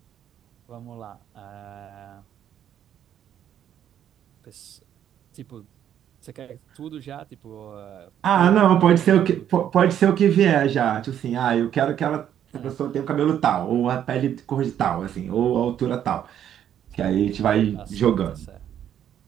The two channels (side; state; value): left; quieter; 10.1 dB